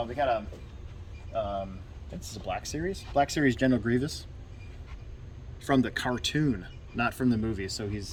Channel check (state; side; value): identical; both; correlation 1.00